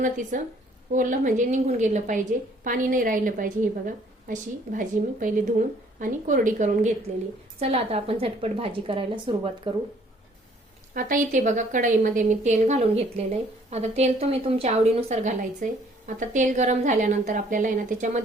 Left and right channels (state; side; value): normal; both; correlation 0.60